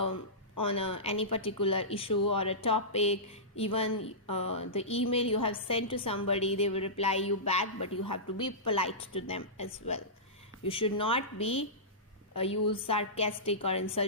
any particular issue or a topic. Even the email you have sent to somebody, they will reply you back, but you have to be polite to them as well. You should not be use sarcastic or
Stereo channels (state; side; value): normal; both; correlation -0.17